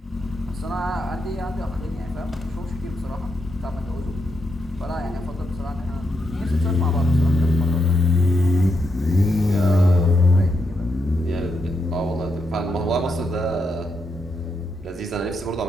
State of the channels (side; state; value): both; normal; correlation 0.82